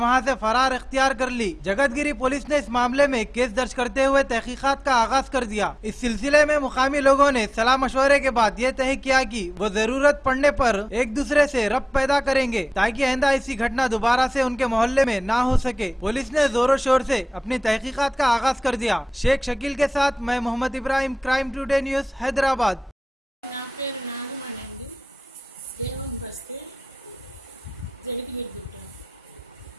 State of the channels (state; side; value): normal; both; correlation 0.98